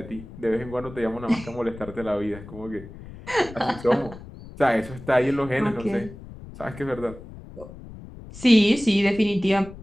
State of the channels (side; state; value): left; noise; rumble, 15 dB below the sound